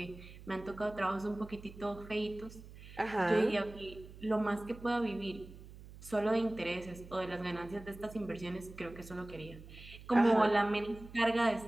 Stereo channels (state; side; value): noise; right; hum, 17 dB below the sound